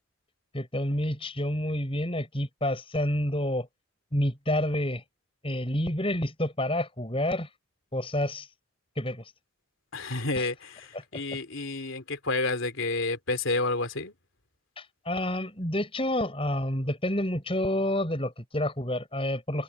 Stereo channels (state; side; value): normal; both; correlation 0.47